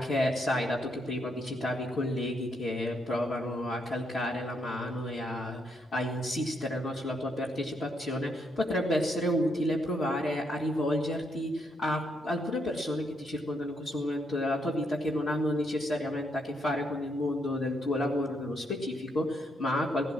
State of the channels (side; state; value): both; normal; correlation 0.76